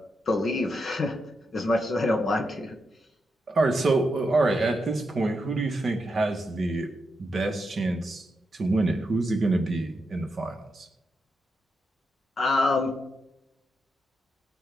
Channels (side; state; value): both; normal; correlation 0.84